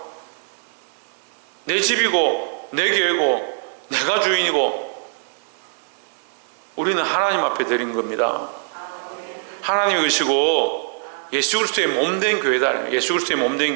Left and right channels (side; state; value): left; silent; 64 dB below the other